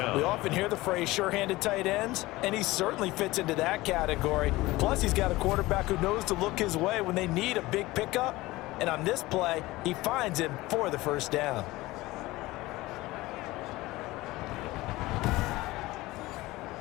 We often hear the phrase sure-handed tight ends, and he certainly fits into that category. Plus, he's got a quarterback who knows to look his way when they need a big pickup. And on this play, he finds him for the first down.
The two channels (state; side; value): quieter; right; 19.3 dB